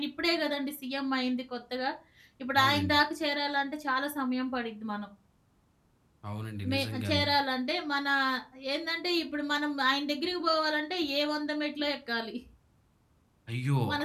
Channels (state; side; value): identical; both; correlation 1.00